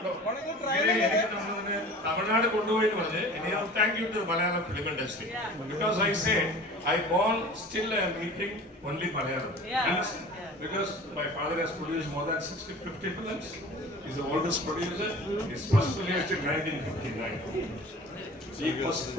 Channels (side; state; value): both; normal; correlation 0.41